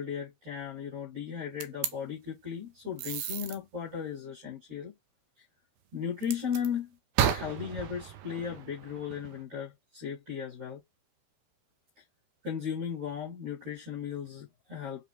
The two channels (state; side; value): late; left; 13 ms